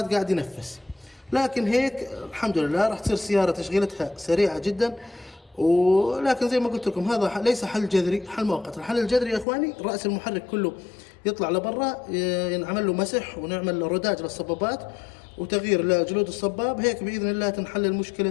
قاعد ينفس. لكن هيك الحمد لله راح تصير سيارة تشغيلتها سريعة جدا. ولكن زي ما قلت لكم هذا ليس حل جذري، حل مؤقت. الحل الجذري يا اخواني راس المحرك كله يطلع لبرا، ينعمل له مسح ونعمل رداج للصبابات وتغيير لجلود الصباب، هيك باذن الله تنحل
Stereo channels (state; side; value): drops out; right; at 9.5 s